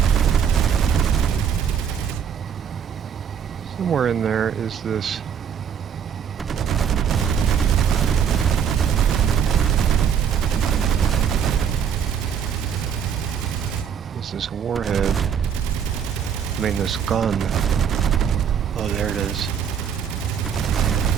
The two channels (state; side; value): quieter; left; 7.8 dB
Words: Somewhere in there is this. This warhead. I mean, this gun. Oh, there it is.